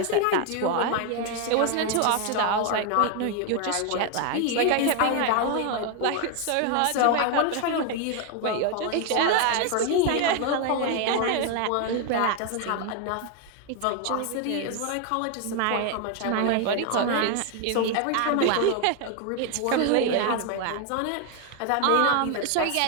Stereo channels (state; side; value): different; both; correlation 0.01